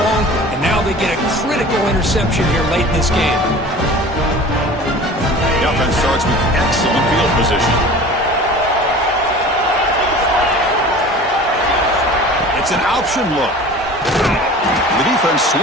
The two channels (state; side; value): normal; both; correlation 0.41